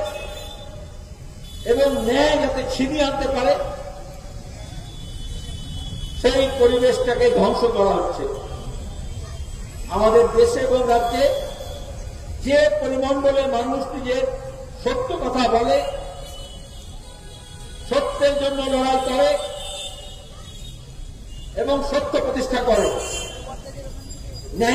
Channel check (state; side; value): identical; both; correlation 1.00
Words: এবং ন্যায় যাতে ছিনিয়ে আনতে পারে, সেই পরিবেশটাকে ধ্বংস করা হচ্ছে। আমাদের দেশে এবং রাজ্যে যে পরিমণ্ডলে মানুষ নিজের সত্য কথা বলে, সত্যের জন্য লড়াই করে এবং সত্য প্রতিষ্ঠা করে,